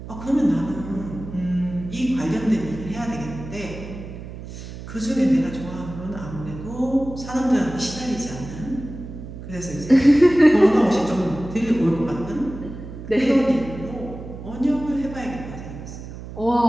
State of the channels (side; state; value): right; noise; hum, 12 dB below the sound